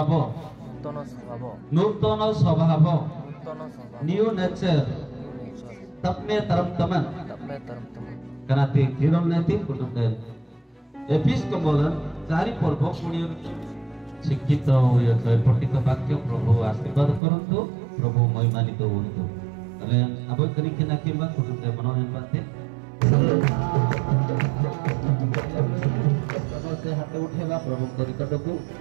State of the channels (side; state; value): left; drops out; at 17.2 s